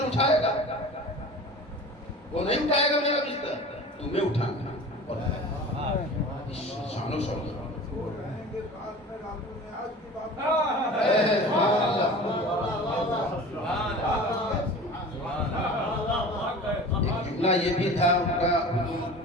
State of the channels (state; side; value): normal; both; correlation 0.38